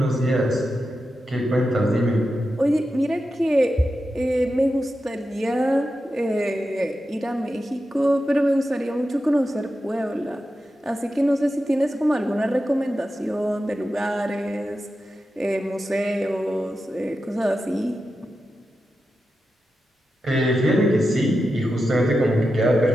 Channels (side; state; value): both; normal; correlation 0.90